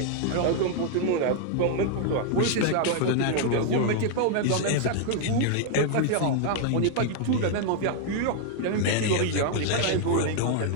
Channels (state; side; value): different; both; correlation 0.00